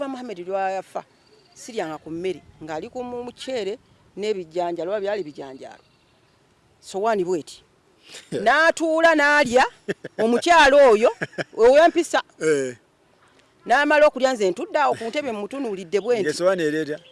Muhammad lwayafa siryanga ku mmere ng'ali ku muceere n'ebijjanjalo oba byali bijanjalo sowaani bweti n'atuula n'alya omukyalo oyo ow'empisa n'amala okulya nze ntudde awo ku ntebe mutunuulidde bwenti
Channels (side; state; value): both; identical; correlation 1.00